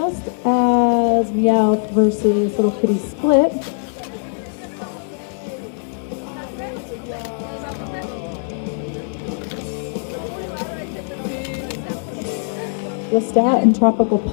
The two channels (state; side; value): silent; right; 63 dB below the other